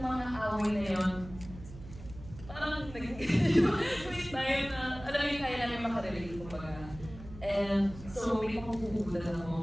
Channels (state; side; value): noise; right; hum, 15 dB below the sound